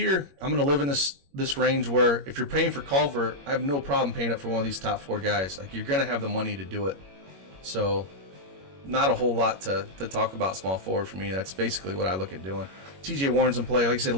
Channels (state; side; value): late; left; 21 ms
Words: I'm going to live in this range where if you're paying for Culver, I have no problem paying up for one of these top four guys. Like, you're going to have the money to do it. So not a whole lot to talk about small forward for me. That's basically what I look at doing. TJ Warren's in play. Like I said,